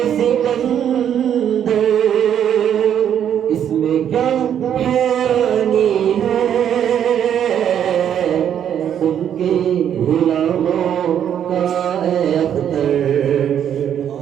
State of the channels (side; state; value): left; quieter; 9.4 dB